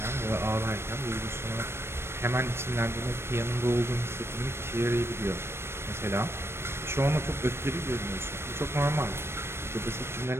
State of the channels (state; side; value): late; left; 0.12 ms